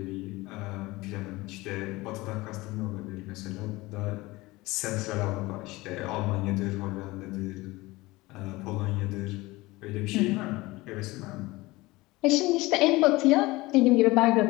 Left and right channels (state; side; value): quieter; right; 20.8 dB